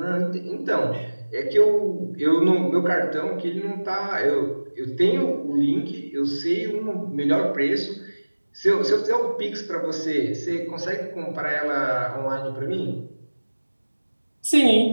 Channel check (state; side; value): inverted; both; correlation -1.00